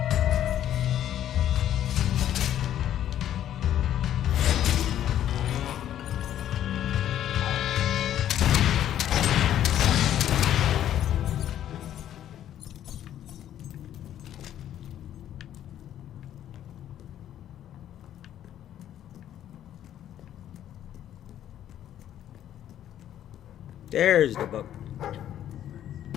There's the book.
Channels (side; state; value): right; quieter; 11.2 dB